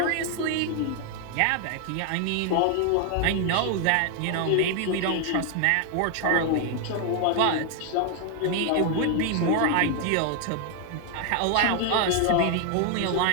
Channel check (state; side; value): different; both; correlation 0.00